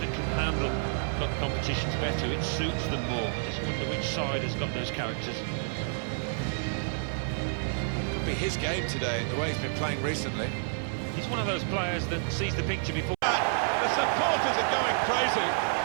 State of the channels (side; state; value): left; silent; 58 dB below the other